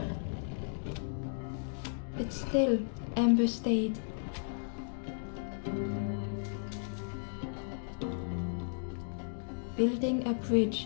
But still, Ember stayed. Building a bridge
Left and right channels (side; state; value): right; silent; digital silence